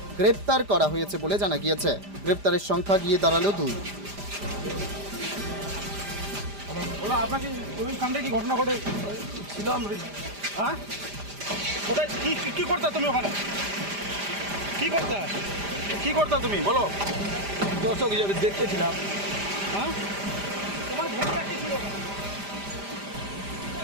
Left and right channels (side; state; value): left; late; 5.0 ms